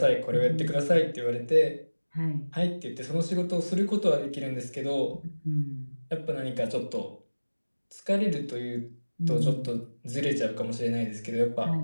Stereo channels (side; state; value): both; inverted; correlation -1.00